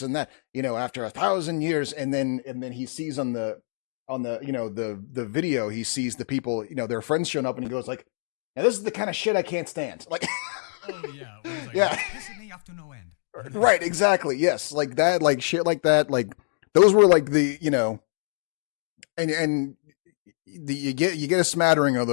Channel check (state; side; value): silent; right; digital silence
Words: and that, after 1,000 years, and then he sees on the video, he sees the people, their friends showing up, and he goes like, now this is the kind of shit I can't stand. Like, oh yeah, where he's like, and this pisses me off to no end. And then, right, exactly, yes, like that, like shit like that, like those were like the, and you get a smattering